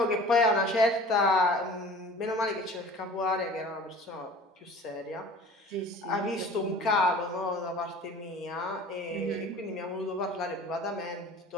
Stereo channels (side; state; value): both; normal; correlation 0.44